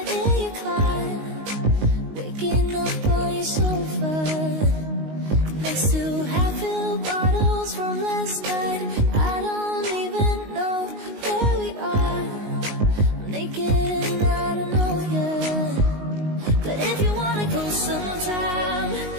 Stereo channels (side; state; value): left; late; 19 ms